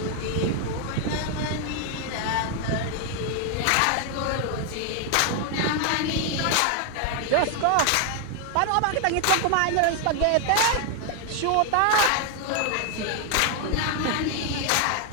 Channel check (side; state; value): both; different; correlation 0.01